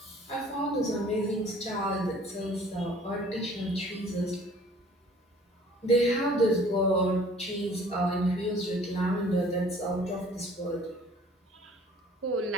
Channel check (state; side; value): normal; both; correlation 0.53